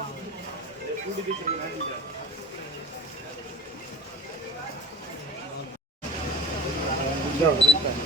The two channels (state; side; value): normal; both; correlation 0.40